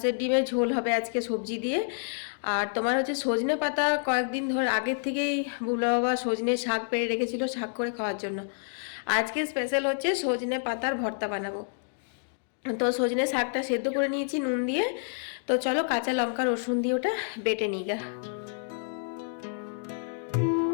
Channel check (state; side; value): silent; right; digital silence